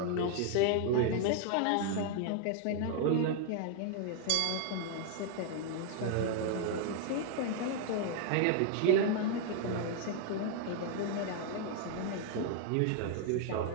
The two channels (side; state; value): both; different; correlation 0.00